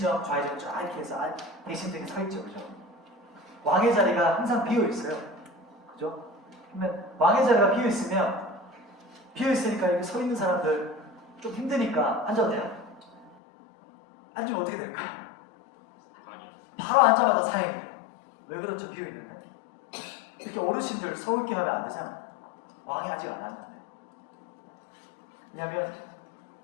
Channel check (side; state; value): right; drops out; at 13.4 s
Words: 좌의정 쫙 이렇게 해서 대신들이 서 있죠. 그죠? 왕의 자리가 항상 비어 있어요. 그죠? 그러면 왕의 자리가 비어 있으니까 여기 서 있는 사람들 좀 힘드니까 앉아도 돼요? 앉으면 어떻게 될까요? 바로 앉자마자 사행이에요. 왜 그렇죠? 비어 있는데. 이렇게 어르신들 서울게 하면 안 되잖아요. 왕이 아직 안 왔는데. 왜냐하면